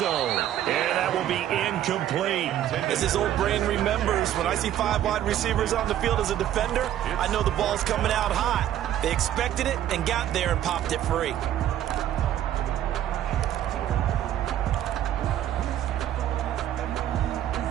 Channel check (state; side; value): quieter; left; 11.6 dB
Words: And that will be incomplete. As his old brain remembers, when I see 5 wide receivers on the field as a defender, I know the ball's coming out hot. They expected it and got there and popped it free.